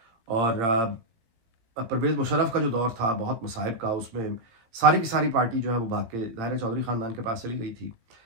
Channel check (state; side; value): late; left; 18 ms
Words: और परवेज़ मुशर्रफ का जो दौर था बहुत मसाइब का, उसमें सारी की सारी पार्टी जो है वो भाग के ज़ाहिर है चौधरी ख़ानदान के पास चली गई थी।